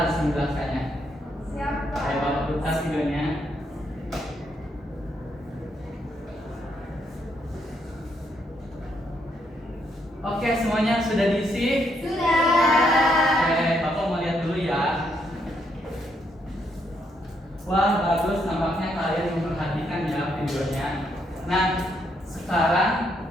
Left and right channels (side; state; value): both; normal; correlation 0.75